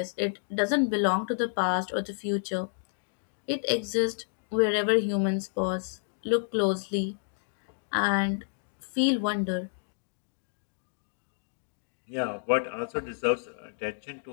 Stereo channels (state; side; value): silent; right; digital silence